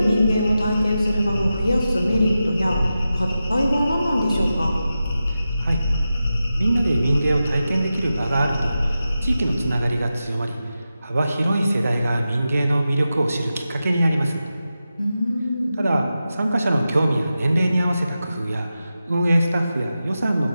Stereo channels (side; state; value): both; inverted; correlation -0.92